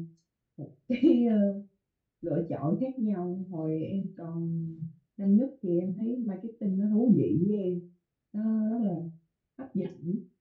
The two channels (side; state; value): both; identical; correlation 1.00